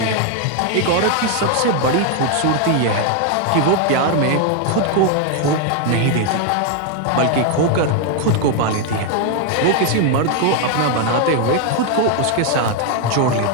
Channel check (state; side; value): different; both; correlation 0.01